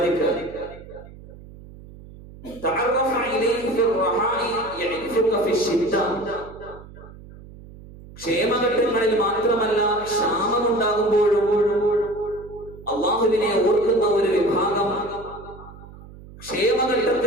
ക്ഷേമഘട്ടങ്ങളിൽ മാത്രമല്ല, ക്ഷാമമുണ്ടാകുമ്പോഴും അള്ളാഹുവിനെ ഓർക്കുന്ന ഒരു വിഭാഗം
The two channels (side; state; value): right; noise; hum, 18 dB below the sound